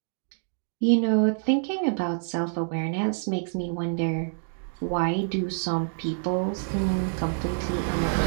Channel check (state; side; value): silent; left; digital silence